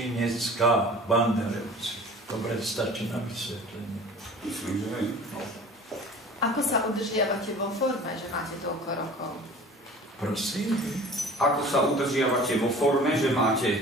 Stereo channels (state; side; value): normal; both; correlation 0.44